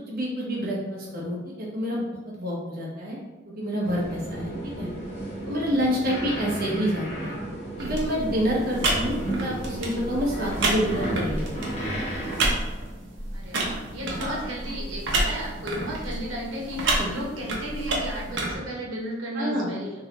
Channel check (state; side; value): normal; both; correlation 0.46